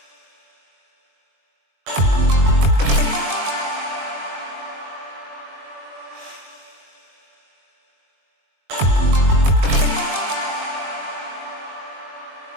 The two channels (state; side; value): late; left; 20 ms